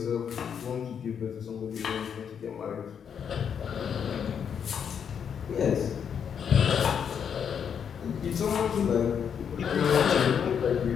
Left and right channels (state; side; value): quieter; right; 7.6 dB